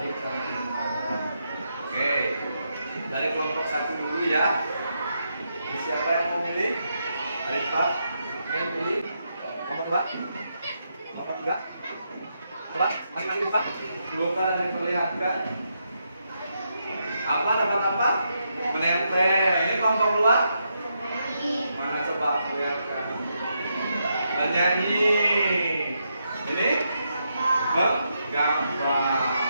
dan menyenangkan. Oke, dari kelompok 1 dulu ya. Jadi siapa yang mau milih? Dari Pak. Oke, pilih. Kelompok 2. Kelompok 3. Coba, angkat Pak. Bukan diperlihatkan. Apa dapat apa? Menempel. Ini kelompok luar. Mana coba perlihatkan. Menyanyi. Ini gambar.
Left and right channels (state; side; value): inverted; both; correlation -0.81